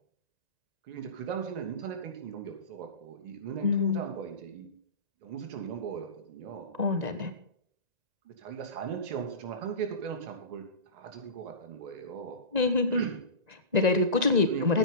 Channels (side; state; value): left; late; 1.9 ms